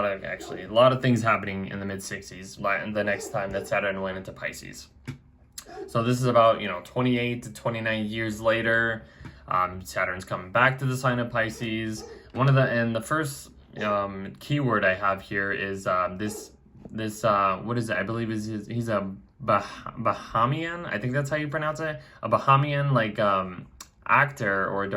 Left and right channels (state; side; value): identical; both; correlation 1.00